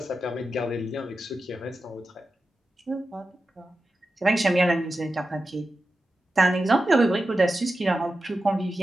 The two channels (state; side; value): normal; both; correlation 0.92